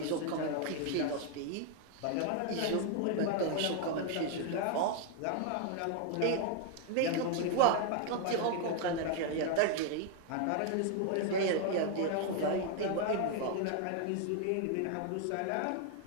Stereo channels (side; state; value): both; different; correlation 0.00